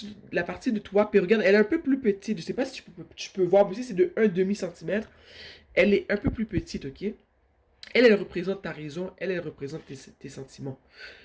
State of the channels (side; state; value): both; identical; correlation 1.00